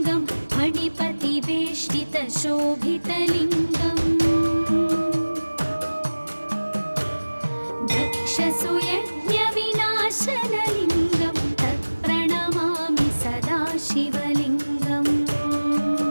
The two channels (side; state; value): both; inverted; correlation -1.00